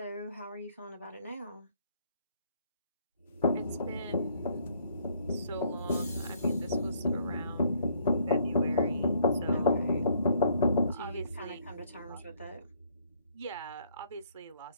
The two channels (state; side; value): inverted; both; correlation -0.66